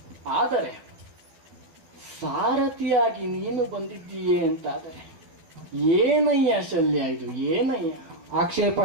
ಆದರೆ ಸಾರಥಿಯಾಗಿ ನೀನು ಬಂದಿದ್ದೀಯೇ ಅಂತಾದರೆ ಏನಯ್ಯ ಶಲ್ಯ, ಇದು ಏನಯ್ಯ? ಆಕ್ಷೇಪ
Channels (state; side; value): late; left; 12 ms